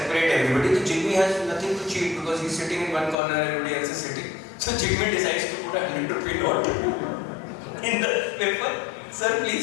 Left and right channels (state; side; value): drops out; right; at 3.2 s